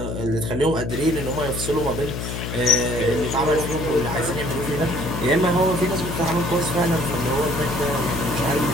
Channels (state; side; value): noise; left; hum, 5 dB below the sound